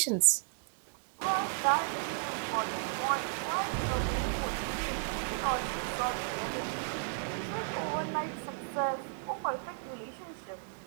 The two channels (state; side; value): silent; left; digital silence